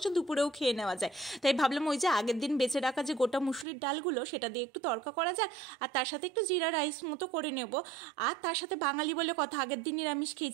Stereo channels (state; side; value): drops out; left; at 3.7 s